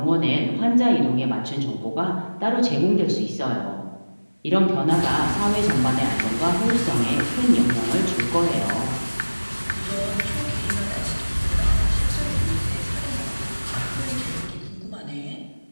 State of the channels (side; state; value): both; inverted; correlation -1.00